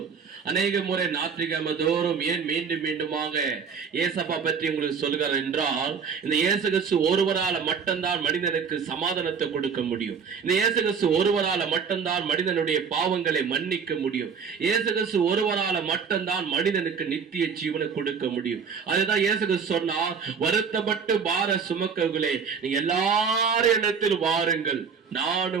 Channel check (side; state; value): left; quieter; 6.2 dB